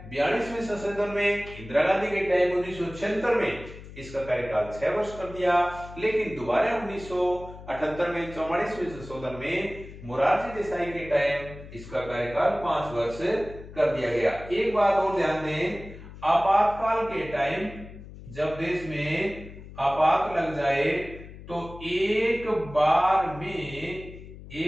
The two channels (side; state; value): left; noise; hum, 15 dB below the sound